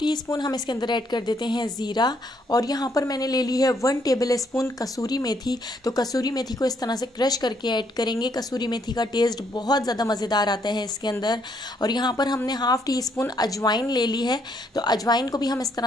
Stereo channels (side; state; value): both; normal; correlation 0.71